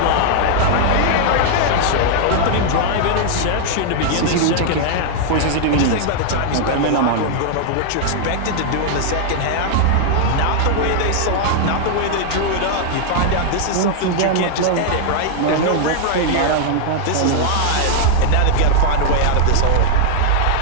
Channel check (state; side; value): different; both; correlation 0.00